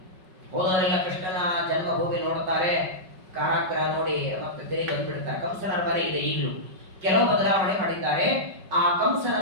ಹೋದವರೆಲ್ಲ ಕೃಷ್ಣನ ಜನ್ಮಭೂಮಿ ನೋಡ್ತಾರೆ, ಕಾರಾಗೃಹ ನೋಡಿ ಮತ್ತೆ ತಿರುಗಿ ಬಂದ್ಬಿಡ್ತಾರೆ. ಕಂಸನ ಅರಮನೆ ಇದೆ ಈಗಲೂ. ಕೆಲವು ಬದಲಾವಣೆ ಮಾಡಿದ್ದಾರೆ. ಆ ಕಂಸನ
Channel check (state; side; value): late; left; 5.3 ms